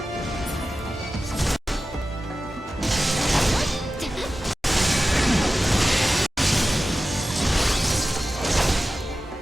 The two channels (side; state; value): both; normal; correlation 0.94